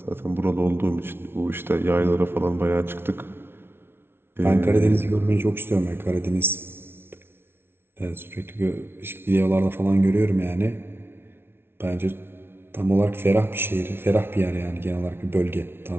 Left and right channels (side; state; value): left; late; 0.11 ms